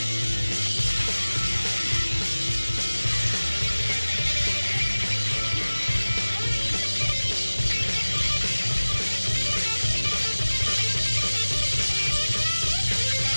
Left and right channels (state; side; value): inverted; both; correlation -1.00